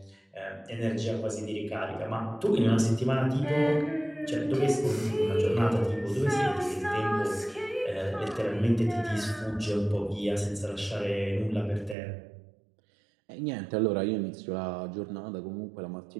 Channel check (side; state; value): left; drops out; at 12.0 s